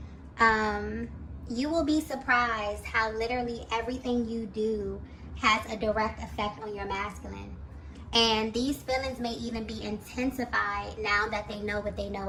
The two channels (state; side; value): identical; both; correlation 1.00